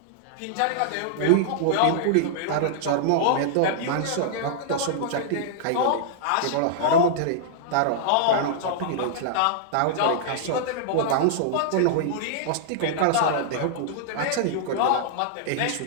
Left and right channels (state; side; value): different; both; correlation -0.01